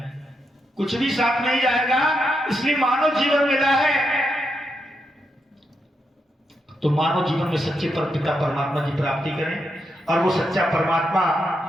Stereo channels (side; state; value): both; normal; correlation 0.83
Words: कुछ भी साथ नहीं जाएगा। इसलिए मानव जीवन मिला है तो मानव जीवन में सच्चे परमपिता परमात्मा की प्राप्ति करें और वो सच्चा परमात्मा